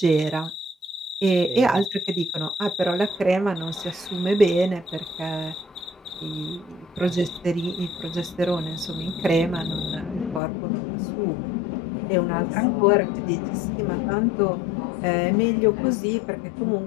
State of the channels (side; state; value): right; drops out; at 10.4 s